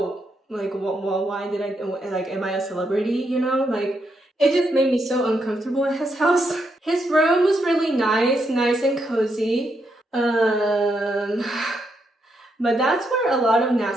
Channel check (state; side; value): normal; both; correlation 0.80